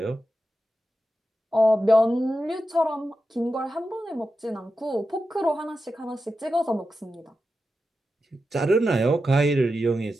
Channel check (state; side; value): normal; both; correlation 0.90